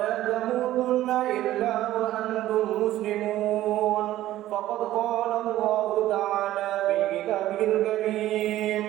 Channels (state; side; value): quieter; left; 14.3 dB